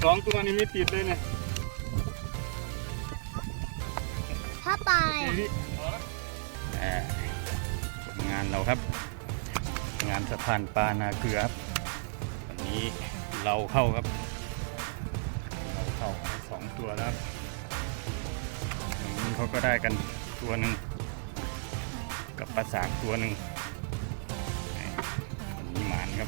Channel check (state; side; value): silent; left; digital silence